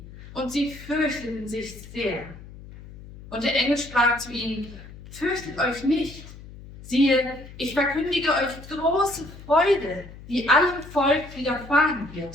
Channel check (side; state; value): left; noise; hum, 17 dB below the sound